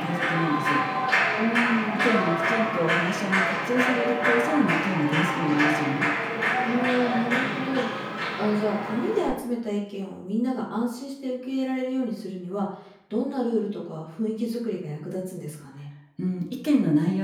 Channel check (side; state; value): both; identical; correlation 1.00